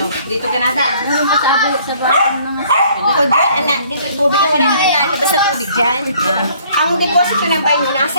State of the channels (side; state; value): both; inverted; correlation -0.59